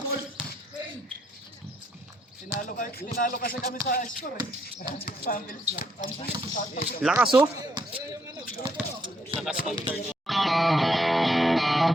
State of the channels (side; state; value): both; normal; correlation 0.72